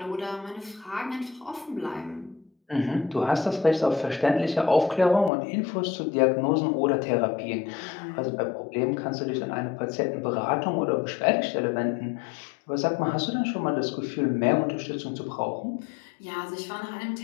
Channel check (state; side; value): drops out; right; at 5.3 s